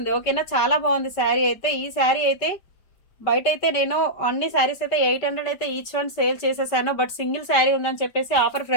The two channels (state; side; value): late; right; 5.2 ms